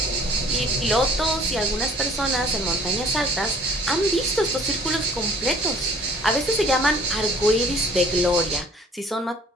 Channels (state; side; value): normal; both; correlation 0.54